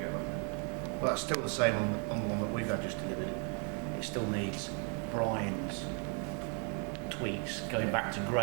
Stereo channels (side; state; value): left; quieter; 39.1 dB